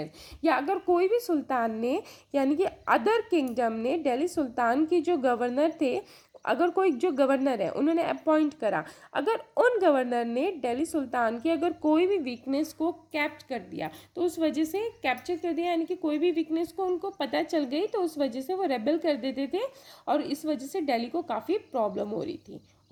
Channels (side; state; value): both; identical; correlation 1.00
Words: या अगर कोई भी सुल्तान ने यानी कि अदर किंगडम ने दिल्ली सुल्तान की जो गवर्नर थे, अगर कोई जो गवर्नर है उन्होंने अपॉइंट करा, अगर उन गवर्नर ने दिल्ली सुल्तान की अगर कोई भी वीकनेस को कैप्चर कर दिया, तो उस वजह से कैप्चर कर दिया यानी कि कोई भी वीकनेस को उनको पता चल गई, तो उस वजह से वो रेबल कर देते थे और इस वजह से दिल्ली को काफ़ी प्रॉब्लम हो रही थी।